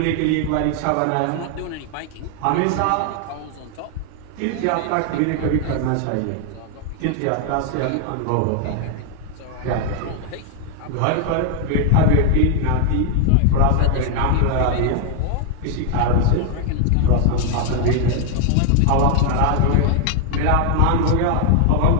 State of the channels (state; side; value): different; both; correlation 0.00